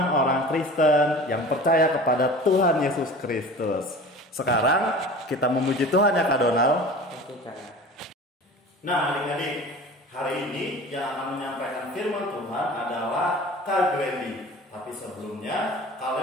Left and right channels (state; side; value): normal; both; correlation 0.39